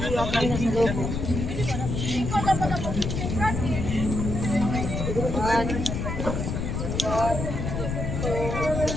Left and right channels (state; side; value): noise; left; rumble, 3 dB below the sound